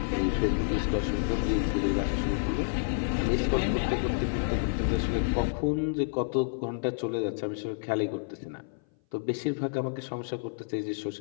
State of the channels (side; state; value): right; silent; 57 dB below the other